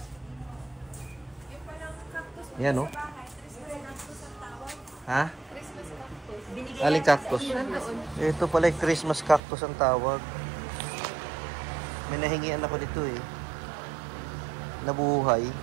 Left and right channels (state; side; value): drops out; left; at 9.4 s